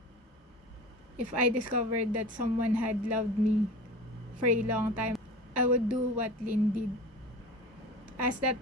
if I discovered that someone had loved me for a long time, I would do what Lynn did. Ask that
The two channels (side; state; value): both; normal; correlation 0.35